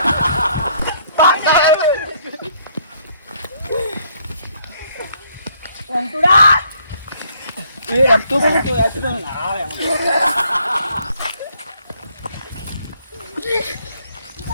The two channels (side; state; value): both; inverted; correlation -0.66